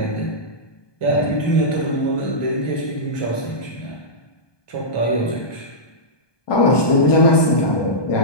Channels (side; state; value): right; late; 1.2 ms